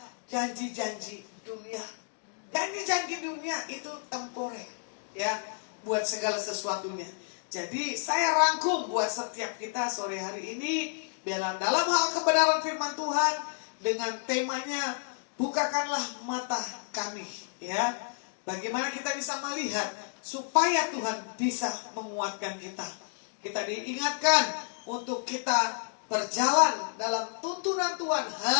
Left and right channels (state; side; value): silent; right; digital silence